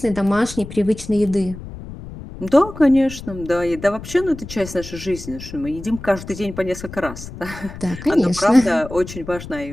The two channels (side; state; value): left; noise; rumble, 13 dB below the sound